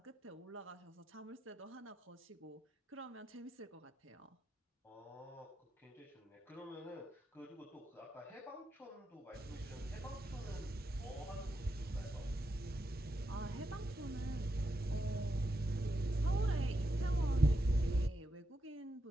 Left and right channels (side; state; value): both; normal; correlation 0.85